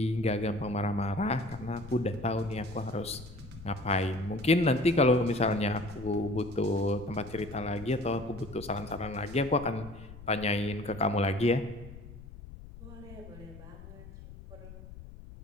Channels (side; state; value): left; noise; rumble, 15 dB below the sound